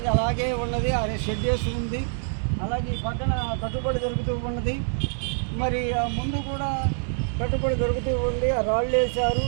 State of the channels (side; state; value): left; silent; digital silence